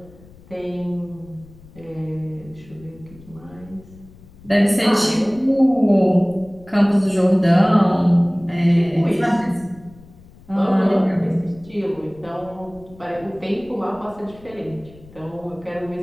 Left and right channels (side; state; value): left; noise; rumble, 23 dB below the sound